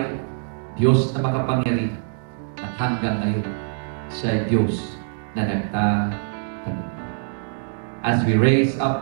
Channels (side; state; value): left; silent; digital silence